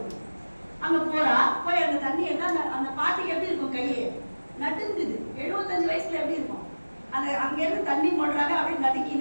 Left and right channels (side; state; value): both; inverted; correlation -1.00